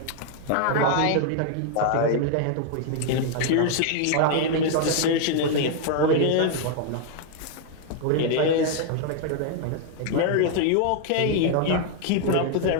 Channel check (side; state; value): both; different; correlation 0.00